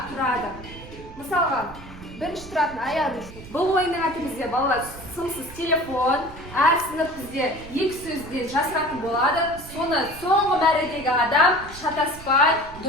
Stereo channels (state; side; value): noise; right; rumble, 16 dB below the sound